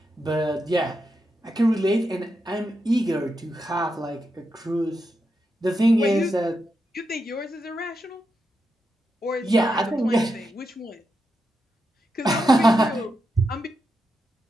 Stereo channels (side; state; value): both; normal; correlation 0.85